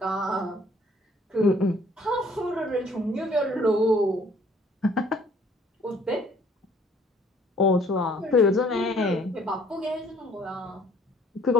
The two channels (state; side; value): normal; both; correlation 0.59